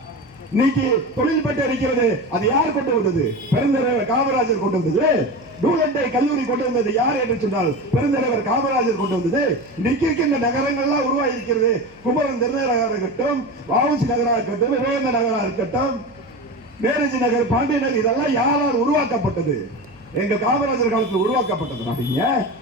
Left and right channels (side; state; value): right; noise; hum, 30 dB below the sound